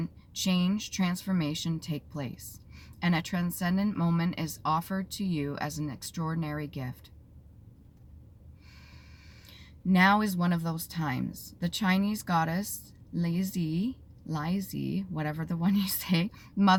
change, transformation take place, and a transcendent moment is offered to you as an extraordinary gift. Now is one of those times. The Chinese goddess Leizi, whatever the one you say,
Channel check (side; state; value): both; identical; correlation 1.00